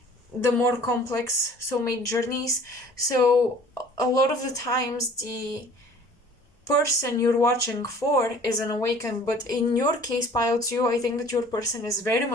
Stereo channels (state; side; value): normal; both; correlation 0.50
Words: the more complex soulmate journeys. So a lot of the times the person you're watching for is unawakened, but in your case, Pile 2, I think that your person is very